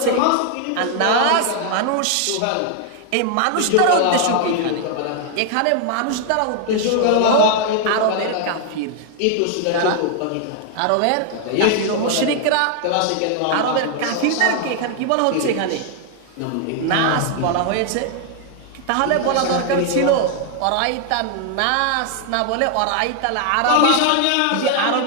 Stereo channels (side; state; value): both; different; correlation 0.00